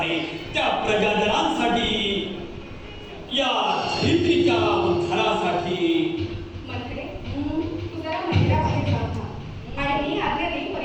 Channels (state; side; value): identical; both; correlation 1.00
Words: त्या प्रजाजनांसाठी या धरित्रीच्या उद्धारासाठी मंत्रे, तू जरा मंदिराबाहेर जाऊन थांब आणि मी आज्ञा